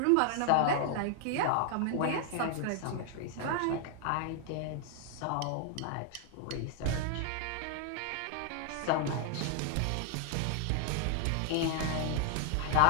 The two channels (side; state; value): both; different; correlation 0.00